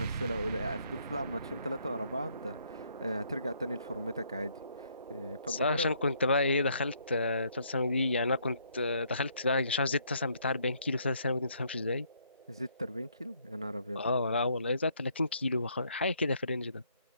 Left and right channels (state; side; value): inverted; both; correlation -0.69